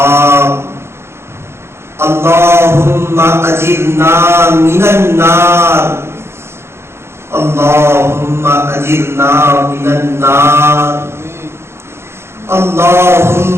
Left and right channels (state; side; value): late; left; 0.12 ms